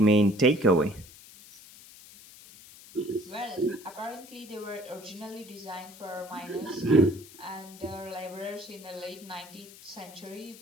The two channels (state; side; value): noise; left; hiss, 19 dB below the sound